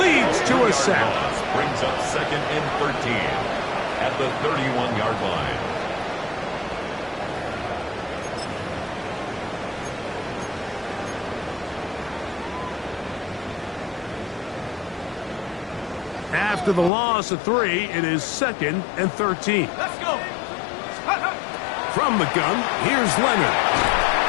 Leads to a sack. Brings up second and 13 at the 31-yard line. After the loss of 3, it is second and 13. Let's go! From the gun, here's Leonard.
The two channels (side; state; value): right; drops out; at 16.9 s